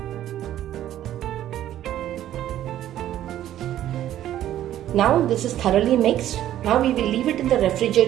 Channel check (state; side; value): quieter; left; 12.3 dB